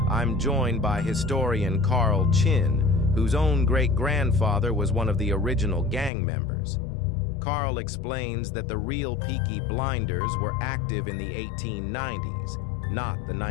I'm joined by historian Carl Chinn, whose own great-grandfather was one of the original gang members. Carl explains that the real Peaky Blinders were active in the 1890s, not the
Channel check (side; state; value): right; drops out; at 6.1 s